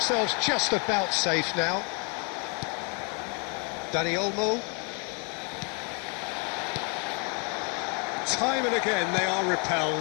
just about safe now. Dani Olmo. Time and again they are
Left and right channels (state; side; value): quieter; right; 36.3 dB